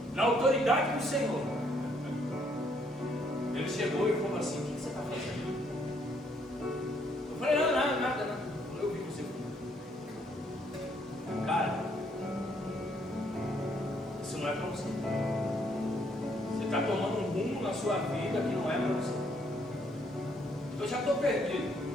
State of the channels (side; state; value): both; normal; correlation 0.69